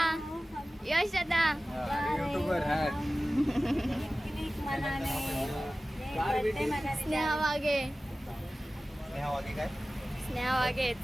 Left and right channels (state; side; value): normal; both; correlation 0.96